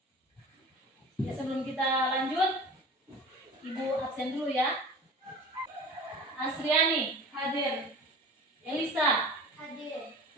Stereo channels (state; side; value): normal; both; correlation 0.39